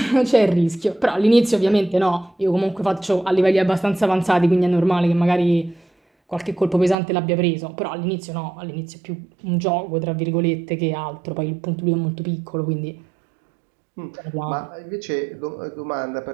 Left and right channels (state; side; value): drops out; left; at 7.0 s